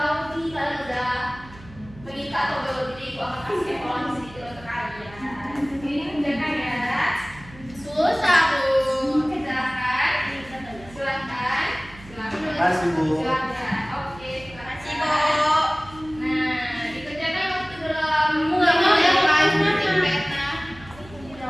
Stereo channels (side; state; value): right; noise; hum, 20 dB below the sound